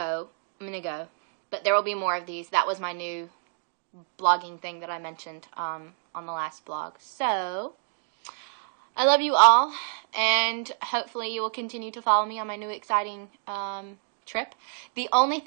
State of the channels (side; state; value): left; silent; digital silence